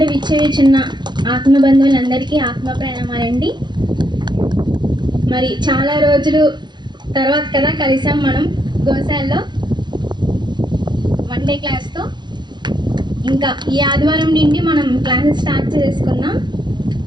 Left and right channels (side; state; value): left; late; 0.21 ms